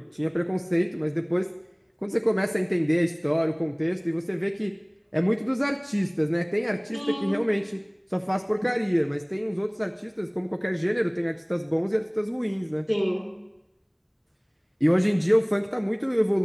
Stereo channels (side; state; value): both; identical; correlation 1.00